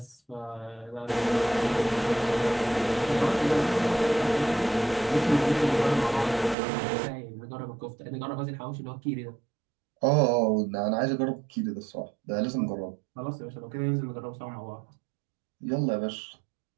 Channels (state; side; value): drops out; left; at 6.6 s